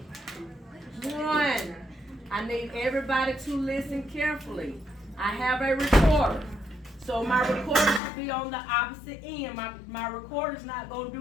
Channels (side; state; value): right; drops out; at 8.0 s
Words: 1. I need everybody to listen carefully. I have a recorder. So my recorder should be on the opposite end. My recorder's not gonna